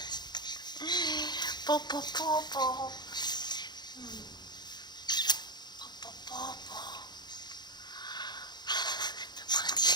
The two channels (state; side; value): late; right; 0.21 ms